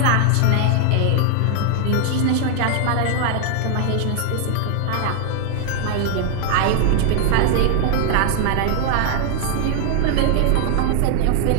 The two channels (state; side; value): different; both; correlation 0.00